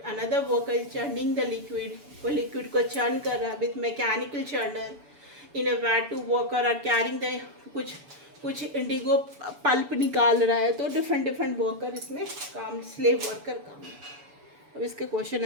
another worker is churning the liquid, वो liquid को churn कर रहा है with mechanical churner in a vat। two worker are carrying the कुछ इंडिगो पल्प निकाल रहा है, तो डिफरेंट वर्कर इसमें काम, स्लेव वर्कर काम। अब इसके क्वेश्चन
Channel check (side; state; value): left; late; 7.0 ms